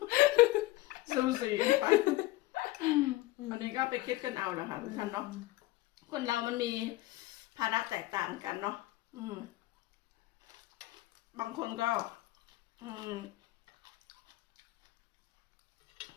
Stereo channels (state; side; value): quieter; right; 18.1 dB